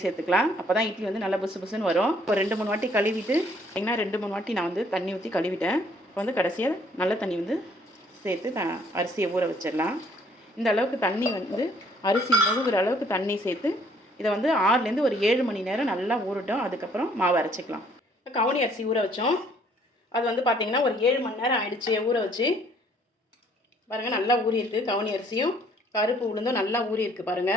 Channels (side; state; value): both; normal; correlation 0.62